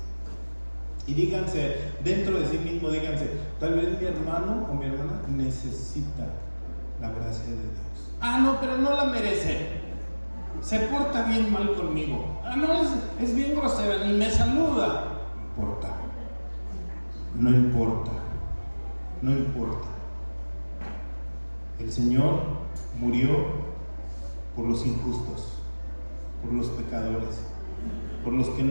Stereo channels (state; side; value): inverted; both; correlation -1.00